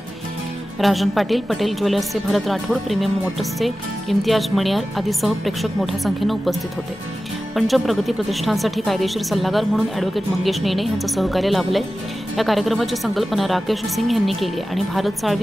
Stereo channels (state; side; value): normal; both; correlation 0.95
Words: राजन पाटील, पटेल ज्वेलर्सचे भरत राठोड, प्रीमियम मोटर्सचे इम्तियाज मणियार आदीसह प्रेक्षक मोठ्या संख्येने उपस्थित होते। पंचम प्रगती प्रतिष्ठानसाठी कायदेशीर सल्लागार म्हणून ॲडव्होकेट मंगेश नेने यांचं सहकार्य लाभलंय। या कार्यक्रमाची संकल्पना राकेश सिंग यांनी केली आहे आणि भारत